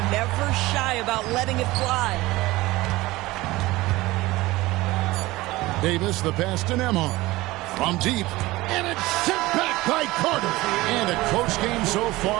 never shy about letting it fly. Davis, the pass to Nembhard. From deep. And it's sent back by Carter. And a close game so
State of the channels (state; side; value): quieter; left; 19.3 dB